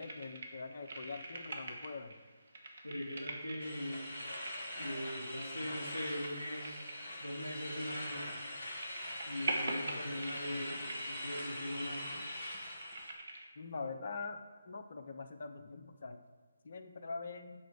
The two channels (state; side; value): inverted; both; correlation -0.85